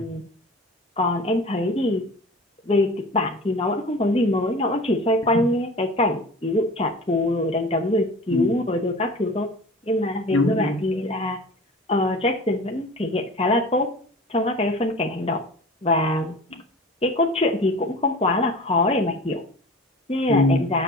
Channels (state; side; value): normal; both; correlation 0.38